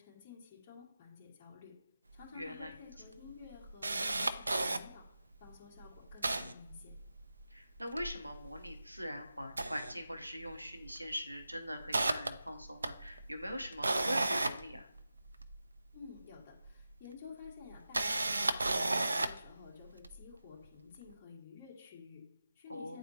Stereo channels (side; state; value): both; inverted; correlation -0.92